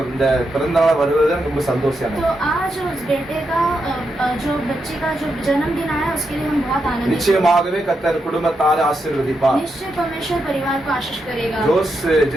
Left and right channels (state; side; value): normal; both; correlation 0.84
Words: இந்த பிறந்தநாள் வருவது ரொம்ப சந்தோஷம். तो आज उस बेटे का जो बच्चे का जो जन्मदिन आया उसके लिए हम बहुत आनंदित हैं। நிச்சயமாகவே கர்த்தர் குடும்பத்தாரை ஆசீர்வதிப்பார். निश्चय परमेश्वर परिवार को आशीष करेगा। ஜோஸ்,